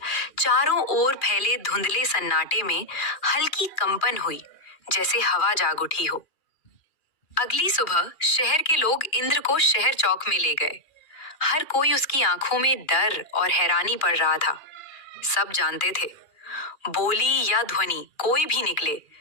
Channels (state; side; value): late; right; 2.4 ms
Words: चारों ओर फैले धुंधले सन्नाटे में हल्की कंपन हुई, जैसे हवा जाग उठी हो। अगली सुबह शहर के लोग इंद्र को शहर चौक में ले गए। हर कोई उसकी आंखों में डर और हैरानी पड़ रहा था। सब जानते थे, बोली या ध्वनि कोई भी निकले,